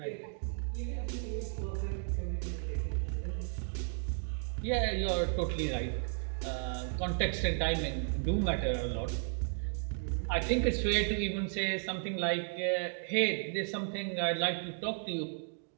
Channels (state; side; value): silent; left; digital silence